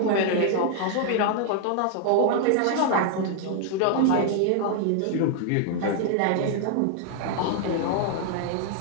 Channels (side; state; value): both; different; correlation 0.00